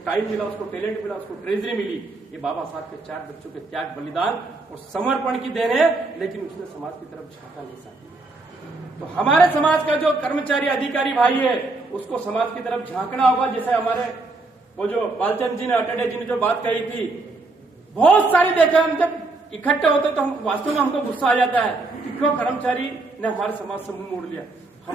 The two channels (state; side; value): quieter; left; 3.3 dB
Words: टाइम मिला, उसको टैलेंट मिला, उसको ट्रेजरी मिली। ये बाबा साहब के 4 बच्चों के त्याग, बलिदान और समर्पण की देन है, लेकिन उसने समाज की तरफ झांका नहीं साथी। तो हमारे समाज का जो कर्मचारी अधिकारी भाई है उसको समाज की तरफ झांकना होगा। जैसे हमारे वो जो बालचंद जी ने, अटडे जी ने जो बात कही थी, बहुत सारी देखा, हम जब इकट्ठे होते तो हम वास्तव में हमको गुस्सा आ जाता है कि क्यों कर्मचारी ने हमारे समाज से मुंह मोड़ लिया।